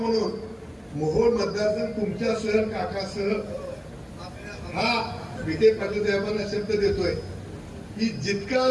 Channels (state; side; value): identical; both; correlation 1.00